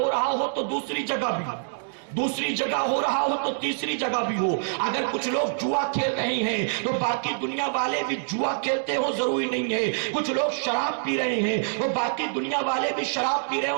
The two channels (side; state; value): left; silent; digital silence